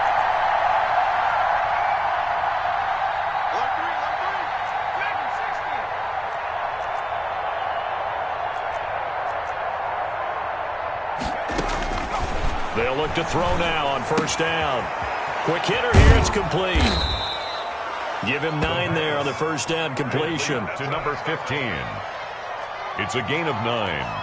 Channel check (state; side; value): identical; both; correlation 1.00